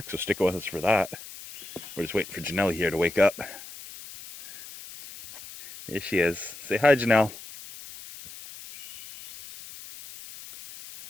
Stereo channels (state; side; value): noise; left; hiss, 14 dB below the sound